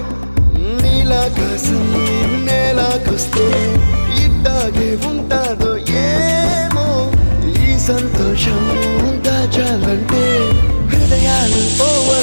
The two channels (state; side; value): inverted; both; correlation -1.00